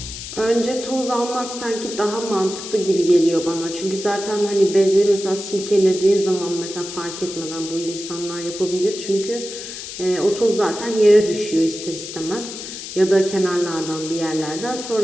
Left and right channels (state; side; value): noise; left; hiss, 10 dB below the sound